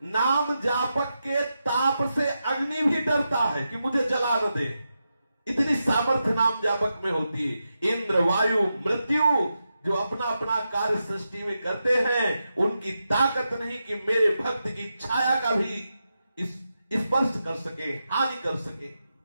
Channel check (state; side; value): inverted; both; correlation -0.88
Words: नाम जापक के ताप से अग्नि भी डरता है कि मुझे जला न दे। इतनी सामर्थ्य नाम जापक में होती है। इंद्र, वायु, मृत्यु जो अपना अपना कार्य सृष्टि में करते हैं, उनकी ताकत नहीं कि मेरे भक्त की छाया का भी स्पर्श कर सके, हानि कर सके।